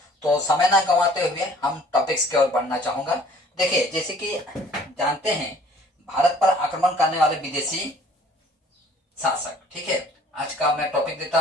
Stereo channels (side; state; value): both; normal; correlation 0.54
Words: तो समय ना गंवाते हुए हम टॉपिक्स की ओर बढ़ना चाहूंगा। देखिए, जैसे कि जानते हैं भारत पर आक्रमण करने वाले विदेशी शासक, ठीक है। आज का मैं टॉपिक देता